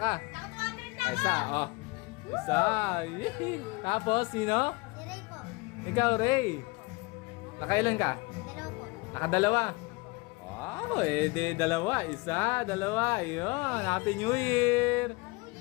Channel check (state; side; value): quieter; right; 25.5 dB